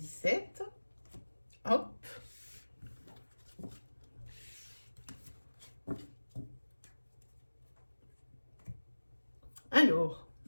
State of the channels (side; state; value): both; inverted; correlation -1.00